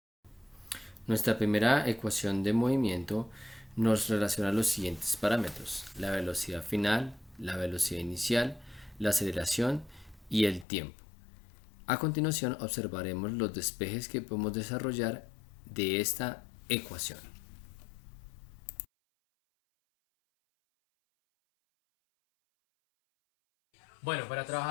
Nuestra primera ecuación de movimiento nos relaciona los siguientes parámetros: la velocidad final, la velocidad inicial, la aceleración y el tiempo. A continuación observaremos los despejes que podemos desarrollar de esta ecuación. Bueno, para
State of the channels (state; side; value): drops out; right; at 10.7 s